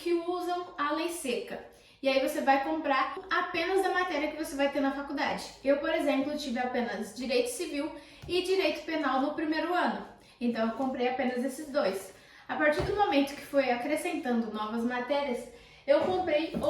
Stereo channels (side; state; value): both; identical; correlation 1.00